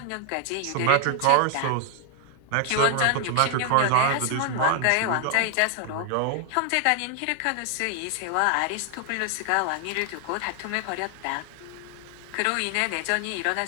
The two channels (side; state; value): both; different; correlation 0.00